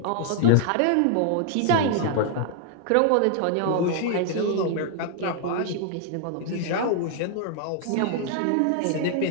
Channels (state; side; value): different; both; correlation 0.00